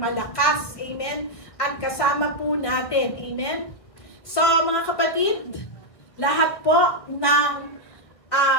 Amen? At kasama po natin. Amen? So, mga kapatid, lahat po ng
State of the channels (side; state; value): right; late; 1.8 ms